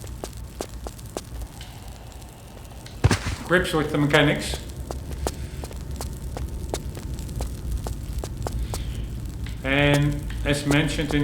grips with the mechanics. And as mentioned in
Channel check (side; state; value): both; identical; correlation 1.00